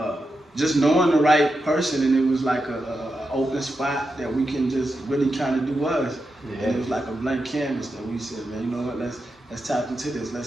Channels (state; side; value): normal; both; correlation 0.88